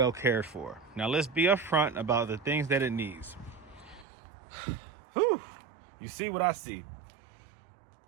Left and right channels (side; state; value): left; drops out; at 4.0 s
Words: cared for. Now let's be upfront about the things that it needs. Whew. You see what I see?